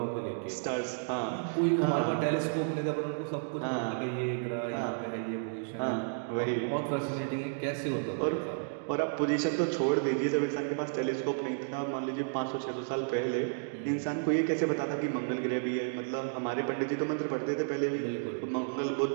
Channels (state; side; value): silent; left; digital silence